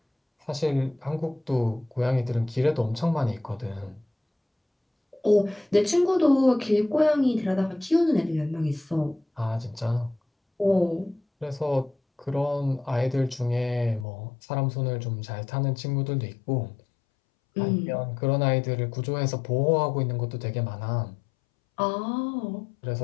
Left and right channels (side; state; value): right; drops out; at 14.1 s